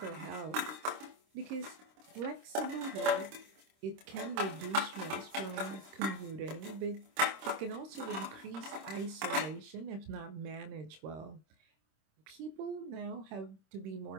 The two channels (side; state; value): left; late; 26 ms